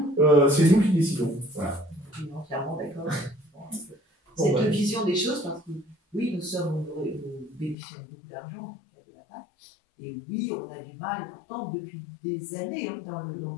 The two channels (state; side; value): drops out; right; at 7.8 s